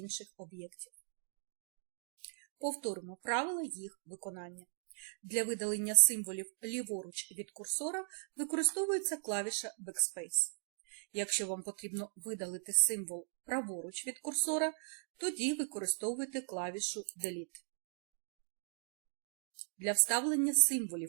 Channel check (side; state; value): left; silent; digital silence